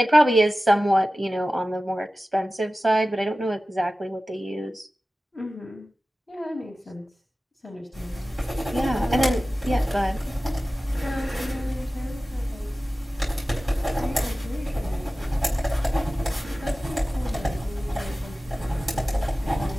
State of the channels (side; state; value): both; normal; correlation 0.96